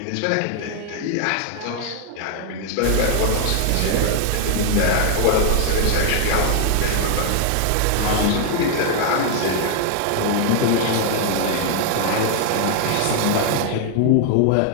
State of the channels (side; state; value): both; different; correlation 0.00